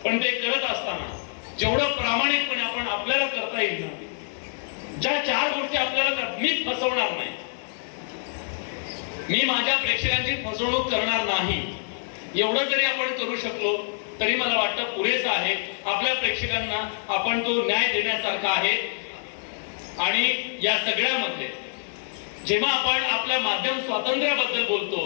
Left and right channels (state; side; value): silent; right; 55 dB below the other